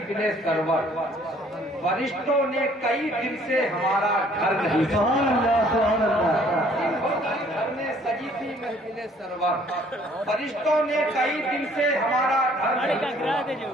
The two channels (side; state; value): both; normal; correlation 0.59